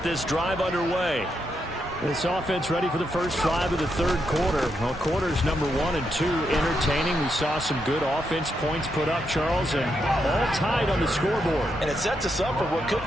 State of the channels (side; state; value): both; normal; correlation 0.81